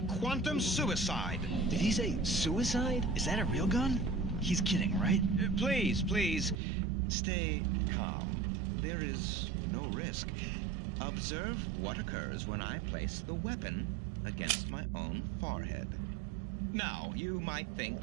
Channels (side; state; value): left; drops out; at 6.6 s